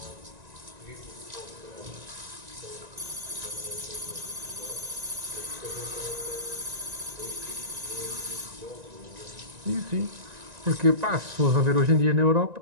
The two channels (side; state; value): left; late; 1.9 ms